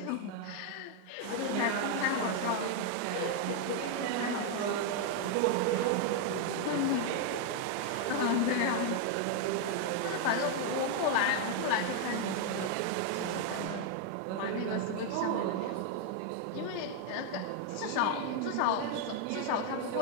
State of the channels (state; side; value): different; both; correlation 0.00